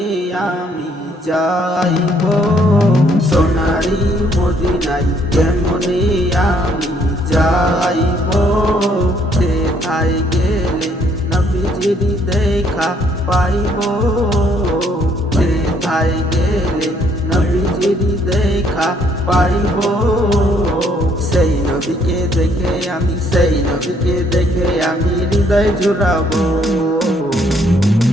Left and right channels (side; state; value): both; normal; correlation 0.67